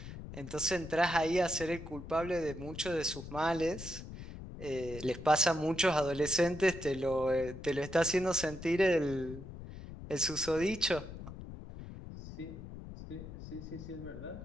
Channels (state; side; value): noise; left; rumble, 12 dB below the sound